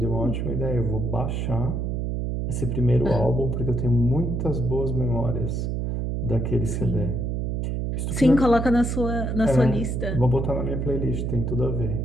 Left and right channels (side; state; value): right; noise; hum, 1 dB below the sound